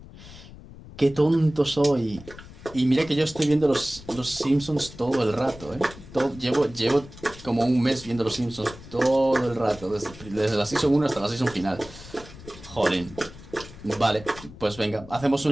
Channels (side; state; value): left; noise; rumble, 17 dB below the sound